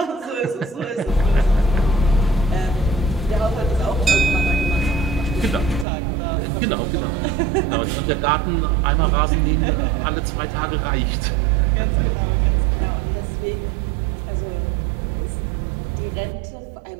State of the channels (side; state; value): left; drops out; at 5.9 s